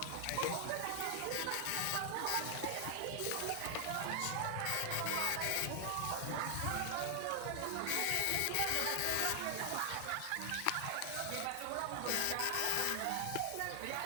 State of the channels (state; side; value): different; both; correlation 0.00